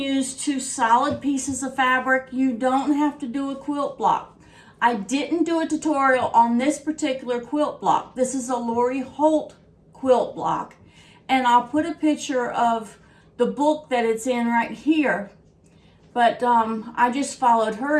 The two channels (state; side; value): identical; both; correlation 1.00